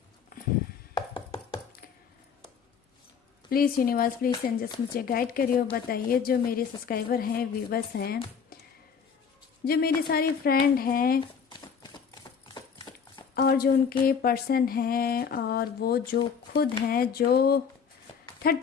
प्लीज़ यूनिवर्स, प्लीज़ एंजल्स मुझे गाइड करिए और बताइए जो मेरे सब्सक्राइबर हैं, व्यूवर्स हैं, जो मेरे सारे फ्रेंड हैं, और जो उनके पर्सन हैं, और वो जो खुद हैं जो थर्ड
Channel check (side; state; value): right; quieter; 6.6 dB